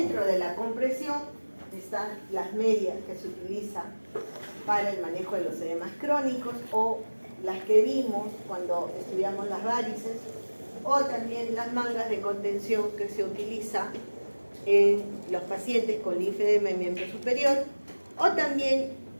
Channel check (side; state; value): both; inverted; correlation -1.00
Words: de la compresión están las medias que se utilizan para el manejo de los edemas crónicos o las que vimos cuando estudiamos las varices, o también las mangas de contención que se utilizan en los pacientes con linfedema en miembro superior, o también